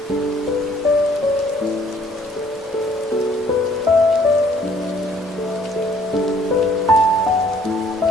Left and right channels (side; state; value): both; normal; correlation 0.61